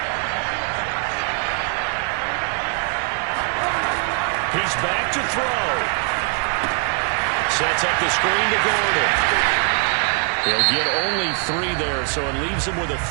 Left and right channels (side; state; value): left; quieter; 40.0 dB